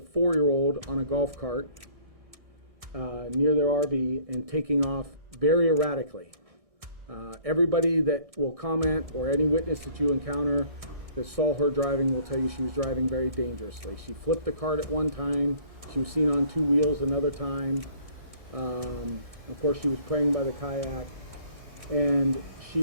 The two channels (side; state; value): left; late; 1.6 ms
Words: on a golf cart near their RV and taking off very erratically. Everybody that will comment or any witness that you encounter that saw her driving will tell you she was driving very dangerously. She flipped the cart at one time. She was seen on 2 wheels another time. Of course, she was praying by the kayak. And